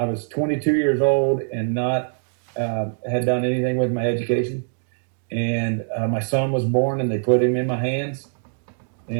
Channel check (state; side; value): silent; left; digital silence